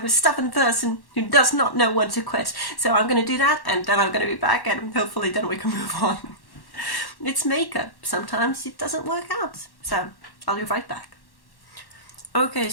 a stubborn person who does not know when to quit. So I'm going to do that, and then I'm going to be back, and hopefully then we can move on. It's makeup. Sometimes it doesn't work out. So I'll be right back. Okay,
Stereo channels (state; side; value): late; right; 1.1 ms